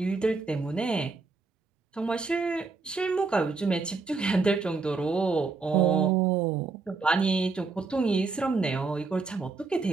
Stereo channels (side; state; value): left; quieter; 4.2 dB